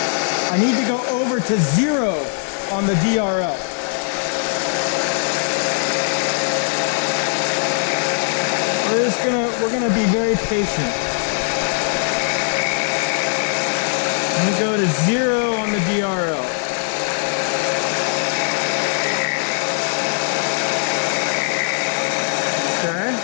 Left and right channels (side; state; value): right; silent; digital silence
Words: I need to go over to 0 on the DRL. We're gonna be very patient. I'm gonna go to 0 on the DRL. Okay.